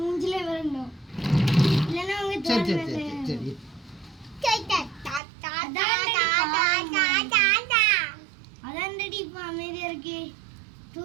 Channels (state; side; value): drops out; left; at 5.2 s